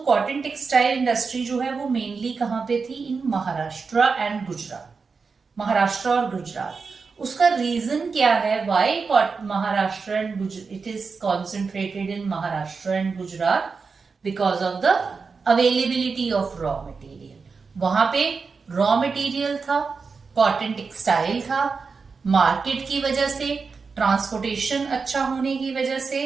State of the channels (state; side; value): quieter; left; 4.9 dB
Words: कॉटन टेक्सटाइल इंडस्ट्री जो है वो मेनली कहाँ पे थी? इन महाराष्ट्र एंड गुजरात, महाराष्ट्र और गुजरात। उसका रीजन क्या है? Why Maharashtra and Gujarat, it is concentrated in Maharashtra and Gujarat because of the availability of raw material. वहां पे रॉ मटेरियल था, कॉटन टेक्सटाइल था, मार्केट की वजह से, ट्रांसपोर्टेशन अच्छा होने की वजह से,